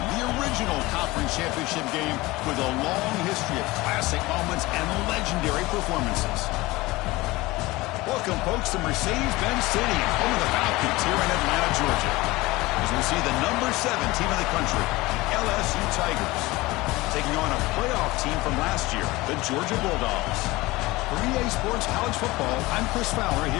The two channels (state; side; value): quieter; right; 20.6 dB